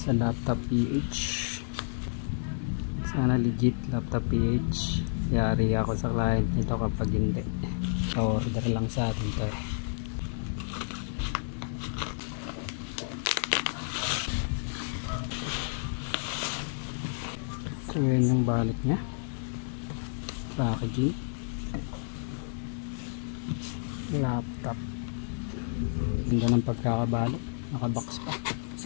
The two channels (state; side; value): silent; right; digital silence